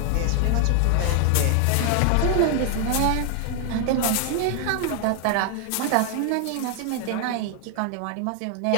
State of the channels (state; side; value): different; both; correlation 0.00